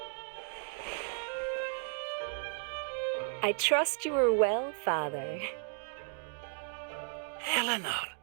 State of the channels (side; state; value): left; silent; 55 dB below the other